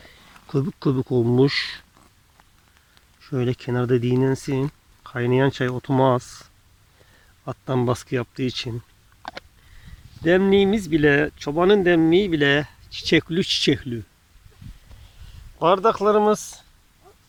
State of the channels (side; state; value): both; identical; correlation 1.00